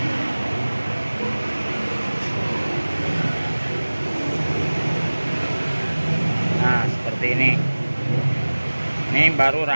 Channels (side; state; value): both; inverted; correlation -1.00